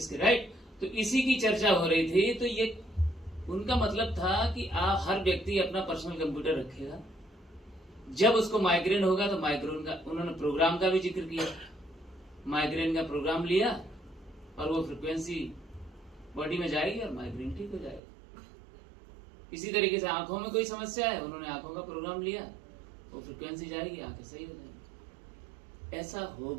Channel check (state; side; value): drops out; left; at 18.0 s